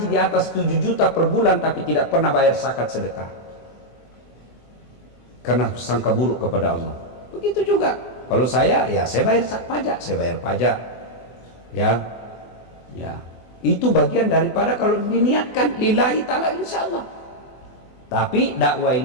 di atas 7 juta per bulan tapi tidak pernah bayar zakat sedekah. Karena sangka buruk kepada Allah. Begitu juga. Kalau saya, ya saya bayar pajak, saya bayar pajak. Ya. Itu bagian daripada kalau diniatkan lillahi ta'ala insyaallah. Tapi dakwah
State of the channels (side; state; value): right; late; 24 ms